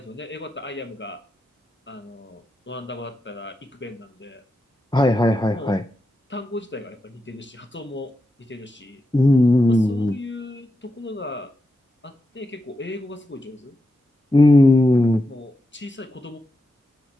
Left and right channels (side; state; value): both; normal; correlation 0.88